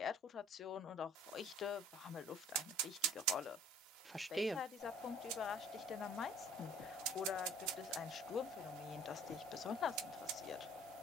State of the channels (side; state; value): both; normal; correlation 0.52